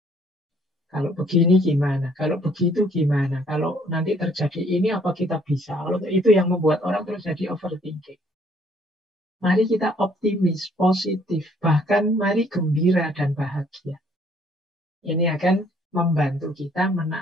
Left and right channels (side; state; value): both; normal; correlation 0.63